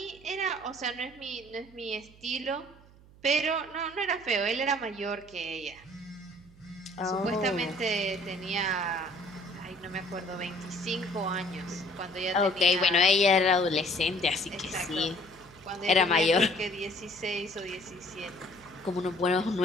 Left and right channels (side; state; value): right; noise; hum, 24 dB below the sound